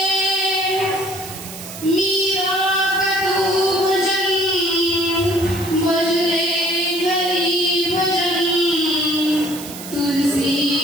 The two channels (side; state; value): right; noise; hiss, 13 dB below the sound